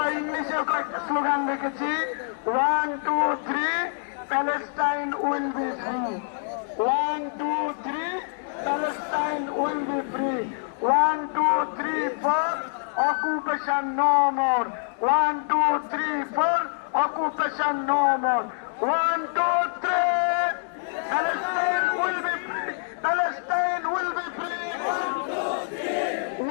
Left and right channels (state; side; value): silent; right; digital silence